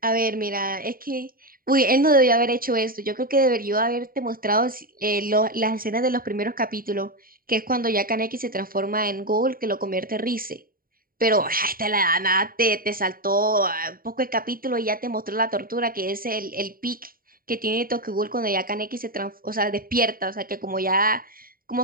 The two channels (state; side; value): late; left; 0.42 ms